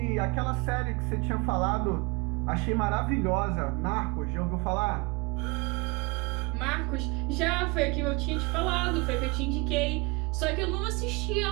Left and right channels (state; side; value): quieter; left; 28.0 dB